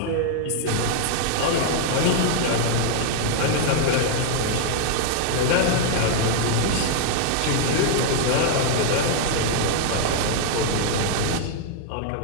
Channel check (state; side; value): different; both; correlation 0.00